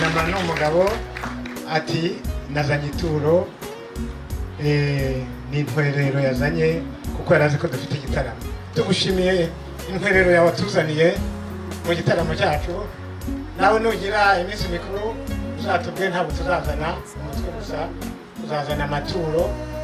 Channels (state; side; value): identical; both; correlation 1.00